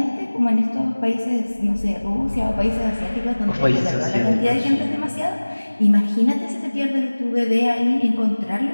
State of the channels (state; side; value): inverted; both; correlation -1.00